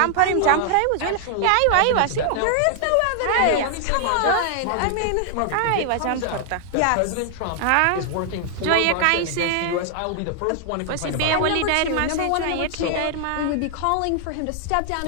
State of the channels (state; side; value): different; both; correlation 0.00